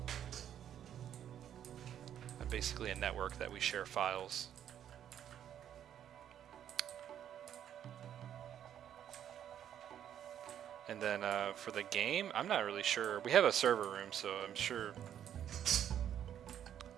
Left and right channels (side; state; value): left; quieter; 10.0 dB